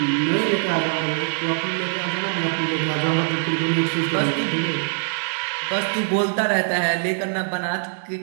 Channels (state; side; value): silent; left; 64 dB below the other